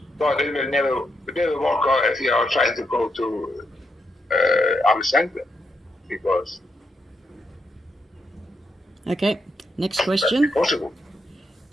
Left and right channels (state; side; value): normal; both; correlation 0.81